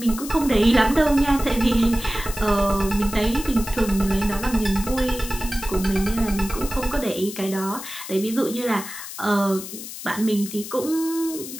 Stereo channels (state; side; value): noise; left; hiss, 11 dB below the sound